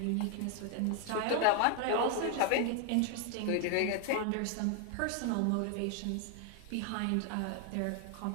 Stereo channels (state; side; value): different; both; correlation 0.01